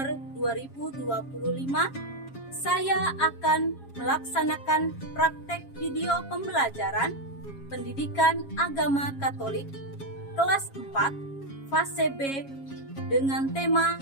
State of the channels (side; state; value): right; late; 7.3 ms